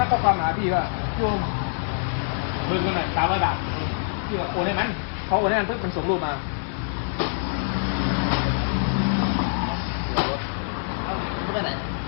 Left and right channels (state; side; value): silent; right; digital silence